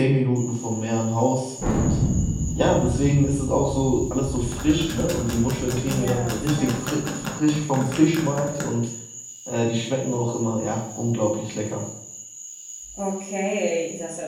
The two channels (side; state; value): both; identical; correlation 1.00